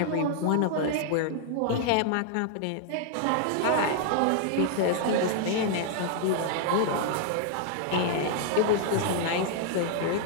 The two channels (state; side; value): different; both; correlation 0.00